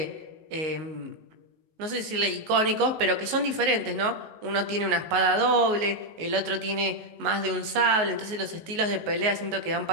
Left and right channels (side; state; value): left; late; 19 ms